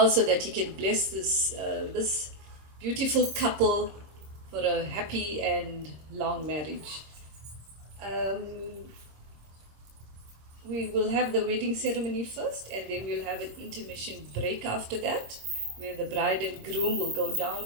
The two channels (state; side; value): late; left; 26 ms